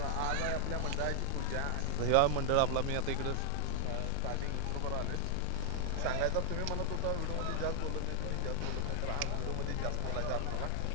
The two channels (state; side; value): different; both; correlation 0.00